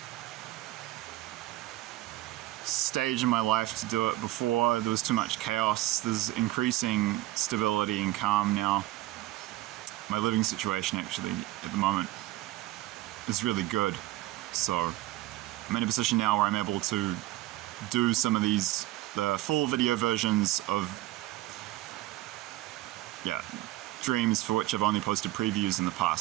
stage in my life to do it before. There was too much chaos. There's increasing stability and calm now. My living situation actually at the moment is really good. So I'm in a position now where I'm able to do some of the full video versions of dreams for which I've only posted previews in the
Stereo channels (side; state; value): left; quieter; 16.8 dB